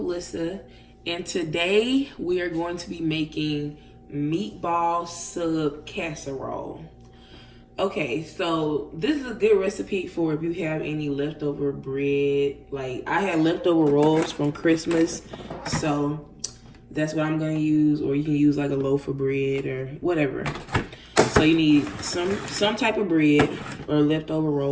And today we are going to be making meatball sub casserole. Okay, so this is a good recipe for if you have any leftover bread. Like I had leftover rolls from Christmas, so that's what I'm gonna use, or you can use like a loaf of bread or whatever. So you need some type of bread or leftover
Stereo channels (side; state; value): both; identical; correlation 1.00